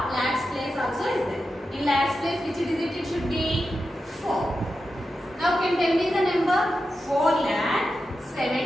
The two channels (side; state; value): both; normal; correlation 0.90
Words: lakhs place also is there. In lakhs place which digit it should be? 4. Now can tell me the number?